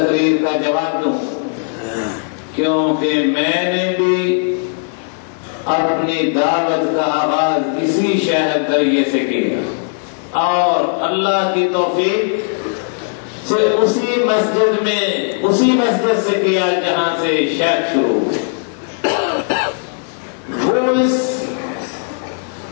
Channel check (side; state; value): right; silent; 62 dB below the other